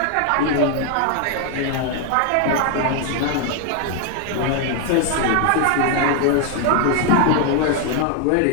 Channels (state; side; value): different; both; correlation 0.01